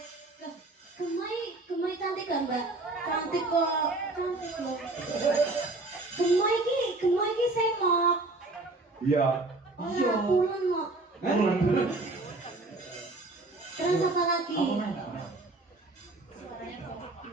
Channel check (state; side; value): quieter; left; 3.1 dB